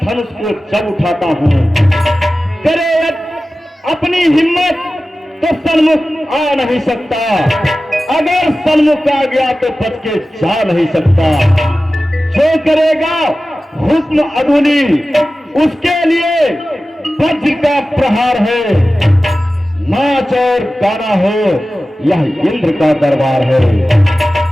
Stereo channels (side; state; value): both; normal; correlation 0.95